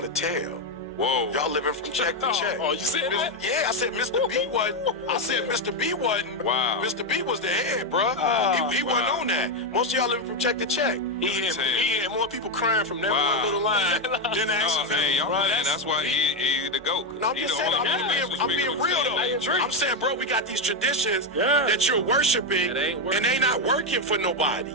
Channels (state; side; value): normal; both; correlation 0.07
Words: tell. Whoa. Y'all living from check to check. Oh, you said that? Yeah, I said Mr. B wasn't. I said Mr. B wasn't. Wow. Mr. B was the head, bro. He wasn't on that. Most of y'all living from check to check. He had more people crying from that one little line than the action film. Hey, y'all playing. That's why he the GOAT. No, I'm just saying, I'm being real though. I'm saying, bro, we got these traditions that you're worshiping, and they not working for nobody.